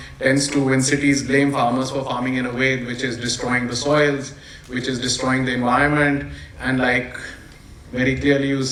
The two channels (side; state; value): both; identical; correlation 1.00